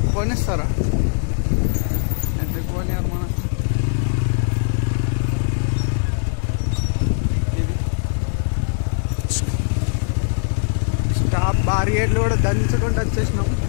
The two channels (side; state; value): right; silent; 65 dB below the other